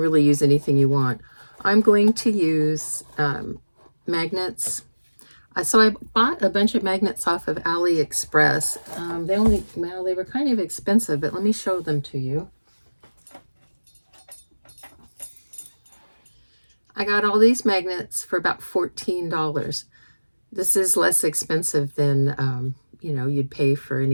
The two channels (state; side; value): inverted; both; correlation -1.00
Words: use anything you want. I'm going to use magnets. So I bought a bunch of magnets off of AliExpress. They were kind of expensive, but let me show them to you. I got all these magnets for about $14. This is less expensive than you know, you'd pay for